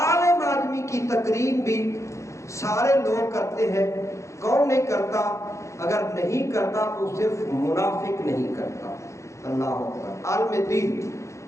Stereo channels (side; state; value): right; late; 0.14 ms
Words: آدمی کی تقریر بھی سارے لوگ کرتے ہیں۔ کون نہیں کرتا؟ اگر نہیں کرتا تو صرف منافق نہیں کرتا۔ اللہ اکبر۔ عالم دین،